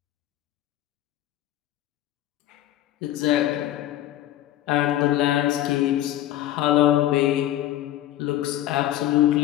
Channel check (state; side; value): quieter; right; 13.4 dB